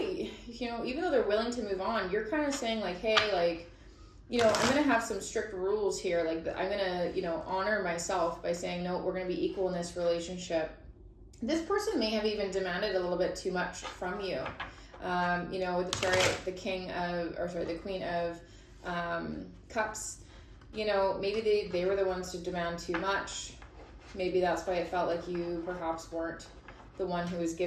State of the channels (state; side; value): identical; both; correlation 1.00